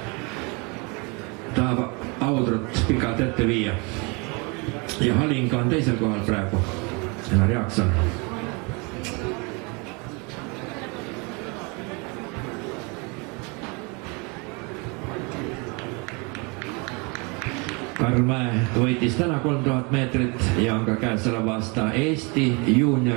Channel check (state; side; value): quieter; left; 30.3 dB